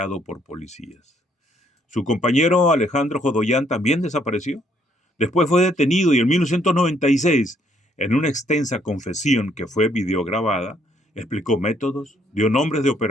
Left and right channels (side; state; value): both; normal; correlation 0.68